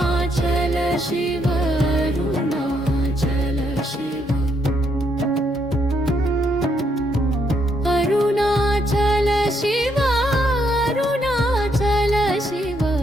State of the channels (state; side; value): normal; both; correlation 0.75